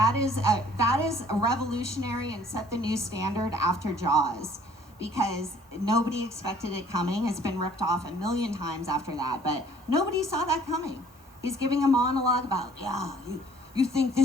is revolutionary and set the new standard after Jaws, because nobody expected it coming. It's been ripped off a million times after that, but nobody saw that coming. He's giving a monologue about, you think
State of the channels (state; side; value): normal; both; correlation 0.56